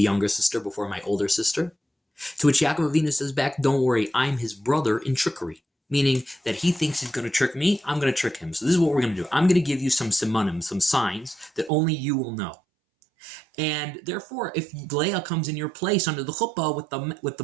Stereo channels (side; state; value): left; drops out; at 11.7 s